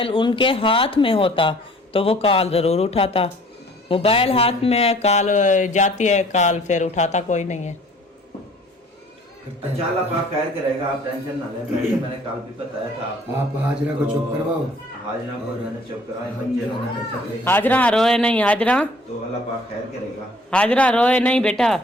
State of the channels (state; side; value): normal; both; correlation 0.54